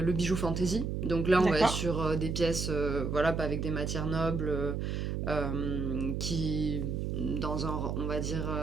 bijou fantasy. Donc là, on va être D'accord. sur des pièces, voilà, pas avec des matières nobles, qui, dans on va dire,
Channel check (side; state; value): right; noise; hum, 2 dB below the sound